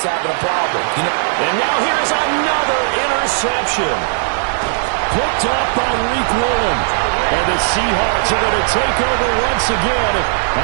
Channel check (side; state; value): left; silent; digital silence